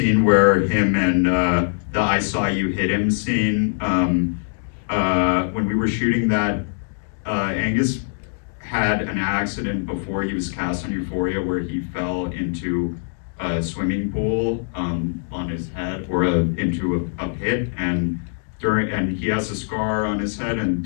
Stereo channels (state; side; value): silent; right; digital silence